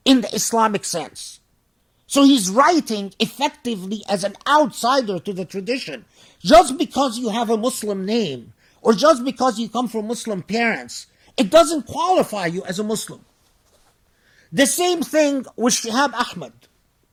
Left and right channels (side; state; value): both; identical; correlation 1.00